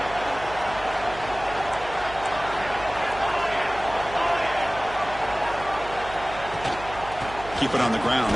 Keep it on the ground.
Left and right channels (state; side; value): noise; right; hum, 14 dB below the sound